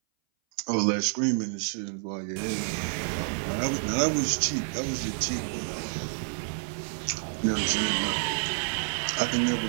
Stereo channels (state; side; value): silent; left; 58 dB below the other